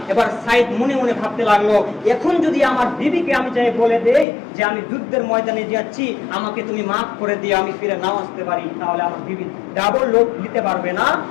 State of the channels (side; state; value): right; drops out; at 4.2 s